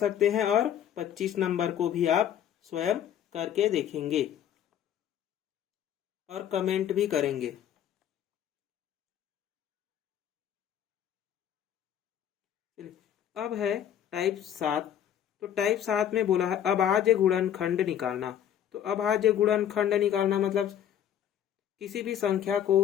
हैं और 25 नंबर को भी आप स्वयं करके देखेंगे और कमेंट भी करेंगे। अब है टाइप 7। तो टाइप 7 में बोला है अभाज्य गुणनखंड निकालना। तो अभाज्य गुणनखंड निकालना मतलब किसी भी संख्या को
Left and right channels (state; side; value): quieter; right; 10.1 dB